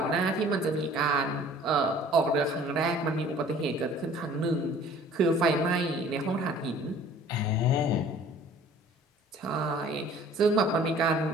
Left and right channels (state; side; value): normal; both; correlation 0.51